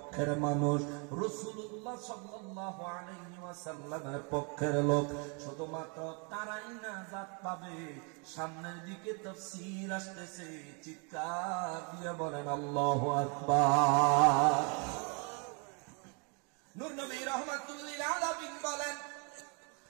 মানুষ, রাসূলুল্লাহ সাল্লাল্লাহু আলাইহি ওয়াসাল্লামের পক্ষের লোক। শুধুমাত্র তারাই নাজাত পাবে। সামনের দিকে তাফসীর আসতেছে, চিৎকার দিয়ে বলেন আল্লাহু আকবার। নূর নবী রাহমাতুল লিল আলামিন বলেন,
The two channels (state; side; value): quieter; left; 35.3 dB